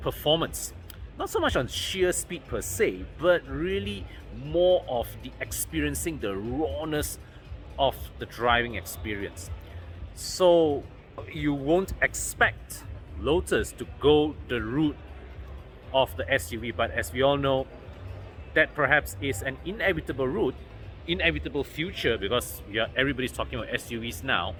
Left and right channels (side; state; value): both; identical; correlation 1.00